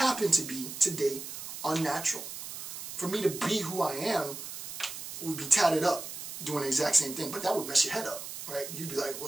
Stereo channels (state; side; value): noise; right; hiss, 9 dB below the sound